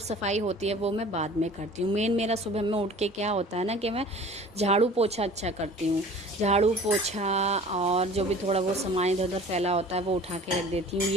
होती है वो मैं बाद में करती हूँ। मेन मेरा सुबह में उठ के क्या होता है ना कि मैं झाड़ू पोछा अच्छा करती हूँ। झाड़ू पोछा और जो भी थोड़ा बहुत सामान इधर उधर फैला होता है वो उठा के रख देती हूँ।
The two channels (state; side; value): normal; both; correlation 0.45